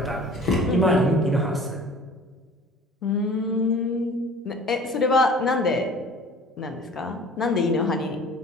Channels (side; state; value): both; normal; correlation 0.46